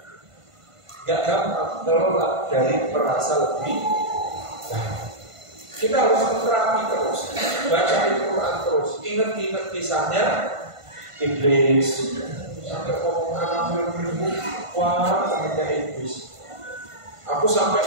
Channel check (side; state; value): left; late; 1.5 ms